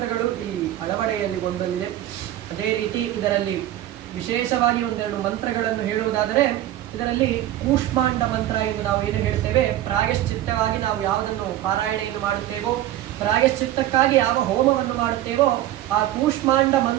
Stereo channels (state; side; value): quieter; left; 13.6 dB